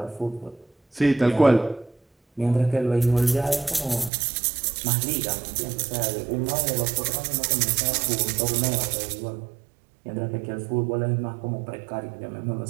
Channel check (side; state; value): left; drops out; at 4.1 s